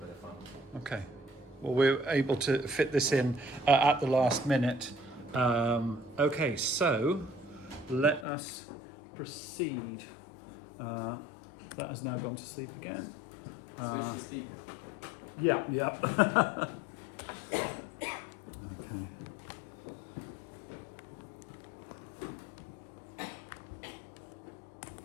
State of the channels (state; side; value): drops out; right; at 8.2 s